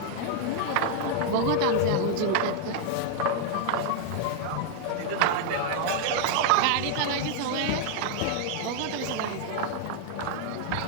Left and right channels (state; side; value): different; both; correlation 0.00